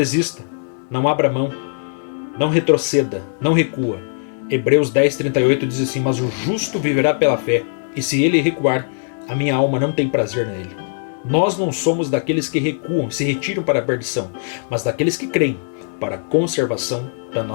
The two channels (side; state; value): right; silent; digital silence